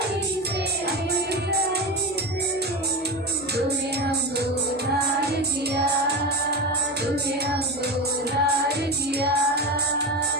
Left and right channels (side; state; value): both; normal; correlation 0.22